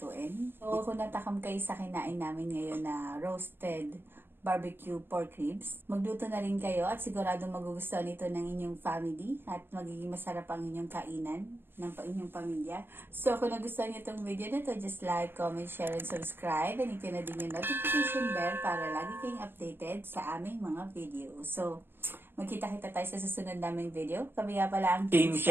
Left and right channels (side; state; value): left; late; 0.10 ms